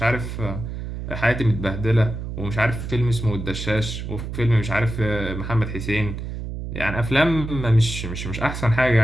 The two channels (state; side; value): noise; right; hum, 6 dB below the sound